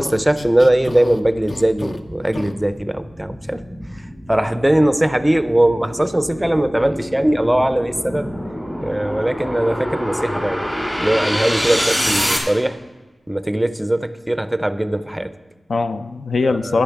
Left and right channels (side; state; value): both; normal; correlation 0.98